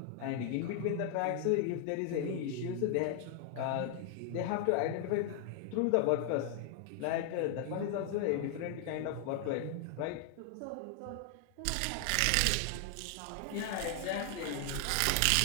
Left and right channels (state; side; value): different; both; correlation 0.00